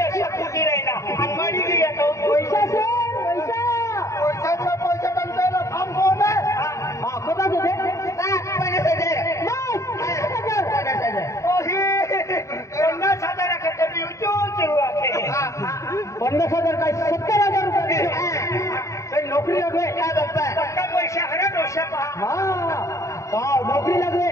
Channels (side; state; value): right; late; 0.15 ms